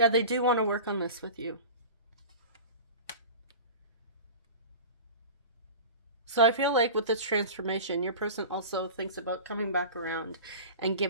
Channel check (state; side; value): inverted; both; correlation -0.34